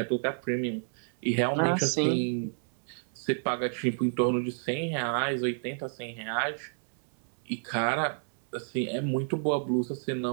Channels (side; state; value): left; silent; 58 dB below the other